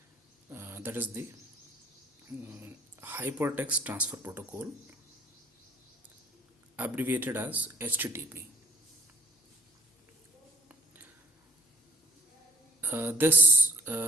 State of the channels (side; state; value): both; normal; correlation 0.55